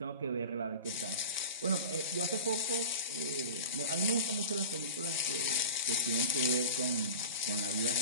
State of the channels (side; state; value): both; inverted; correlation -0.33